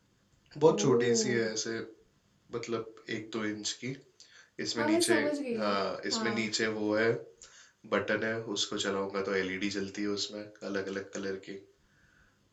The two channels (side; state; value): both; identical; correlation 1.00